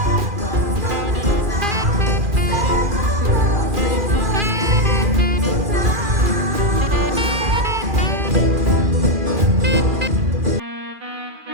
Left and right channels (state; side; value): late; left; 2.4 ms